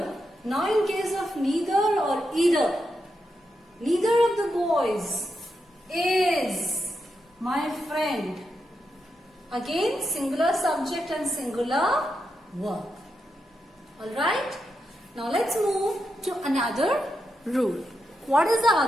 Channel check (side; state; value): both; normal; correlation 0.85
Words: Now in case of neither or either. Neither of the boys is my friend. Again singular subject and singular verb. Alright. Now let's move to another rule. What is the